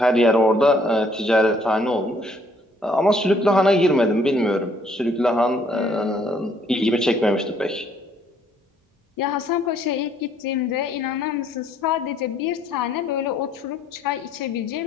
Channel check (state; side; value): normal; both; correlation 0.64